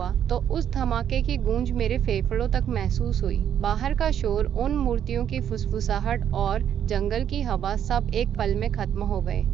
तो उस धमाके की गूंज मेरे फेफड़ों तक महसूस हुई। बाहर का शोर, उन मूर्तियों की फुसफुसाहट और जंगल की हवा सब एक पल में खत्म हो गए।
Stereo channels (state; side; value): quieter; left; 9.5 dB